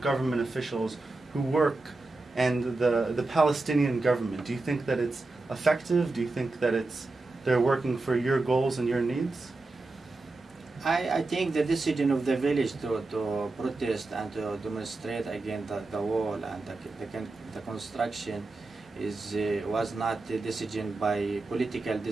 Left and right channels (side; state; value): left; quieter; 3.2 dB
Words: officials who work and the Palestinian government? Do you think that it's effective? Do you think that they're working for your goals and your needs? I think the decision of the village to protest and to demonstrate against the wall and the construction was not a decision by political